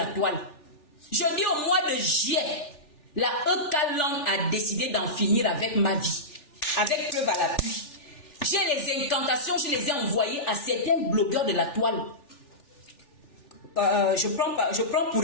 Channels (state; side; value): late; right; 3.4 ms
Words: toile. Je dis au mois de juillet, la Ekalan a décidé d'en finir avec ma vie. Avec preuve à l'appui. J'ai les incantations, je les ai envoyées à certains blogueurs de la toile. Je prends pour